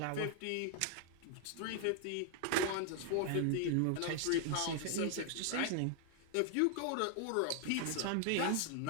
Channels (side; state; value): both; different; correlation 0.00